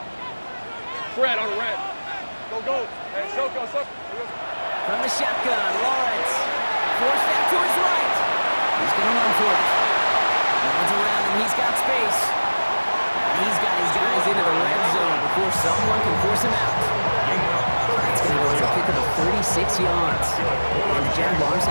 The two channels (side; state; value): both; inverted; correlation -1.00